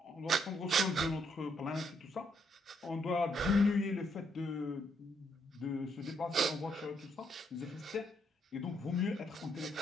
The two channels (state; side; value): normal; both; correlation 0.74